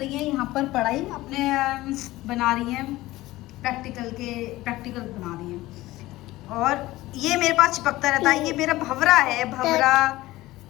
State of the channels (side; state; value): right; quieter; 17.7 dB